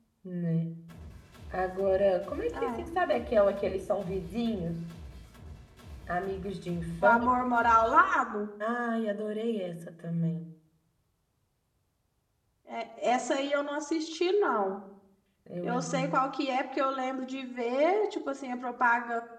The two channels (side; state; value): both; identical; correlation 1.00